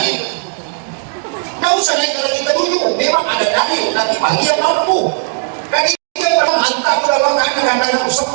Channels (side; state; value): left; silent; 63 dB below the other